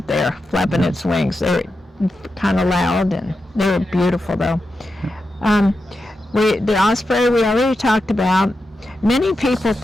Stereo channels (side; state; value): both; normal; correlation 0.89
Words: there flapping its wings. They're kind of loud, and they're beautiful though. The osprey we already talked about. Many people